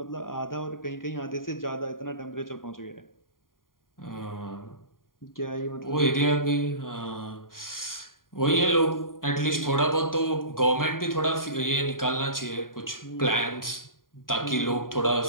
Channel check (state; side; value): late; right; 0.91 ms